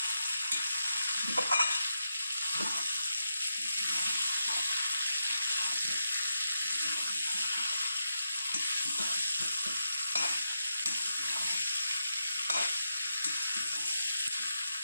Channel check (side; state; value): both; inverted; correlation -0.86